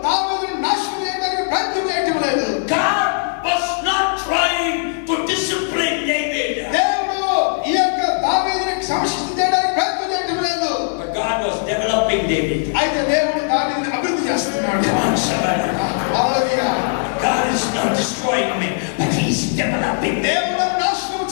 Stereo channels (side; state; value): right; silent; 58 dB below the other